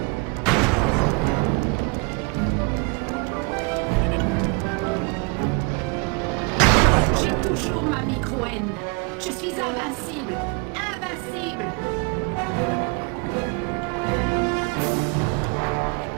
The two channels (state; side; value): quieter; left; 32.0 dB